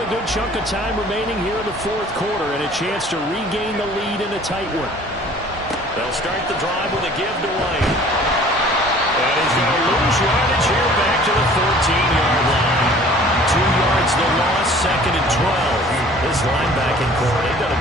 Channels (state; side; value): normal; both; correlation 0.50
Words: a good chunk of time remaining here in the fourth quarter and a chance to regain the lead in a tight one. They'll start the drive with a give to White. And he's going to lose yardage here back to the 14-yard line. 2 yards the loss, 2nd and 12. This linebacking core, they've done